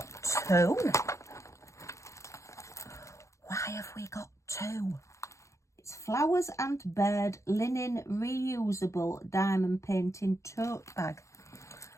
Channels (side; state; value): right; late; 0.14 ms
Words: two. Why have we got two? It's flowers and bird linen reusable diamond painting tote bag.